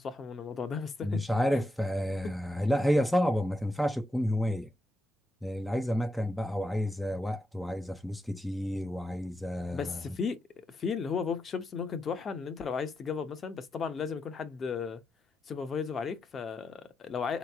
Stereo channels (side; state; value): both; normal; correlation 0.86